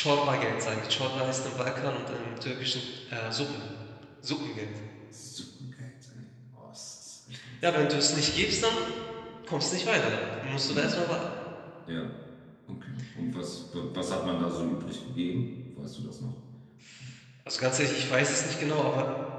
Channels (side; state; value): both; identical; correlation 1.00